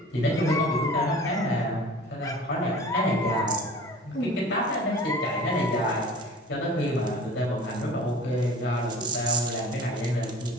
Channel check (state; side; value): normal; both; correlation 0.42